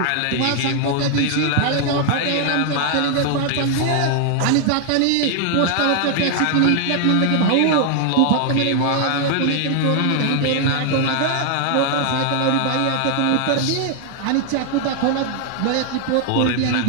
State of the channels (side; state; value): both; different; correlation 0.00